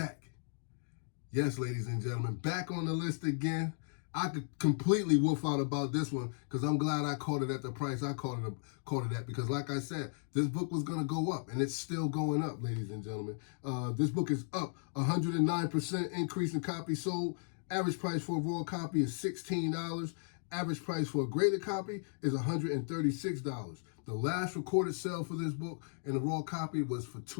Yes, ladies and gentlemen, back on the list again. I could completely wolf out about this one because I'm glad I caught it at the price I caught it at because, like I said, this book was going to go up, and it's still going up, ladies and gentlemen. This book is up 109% increase in copies sold. Average price for a raw copy is $16. Average price for a graded copy is $136. The last recorded sale for this book in a raw copy was for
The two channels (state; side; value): silent; right; digital silence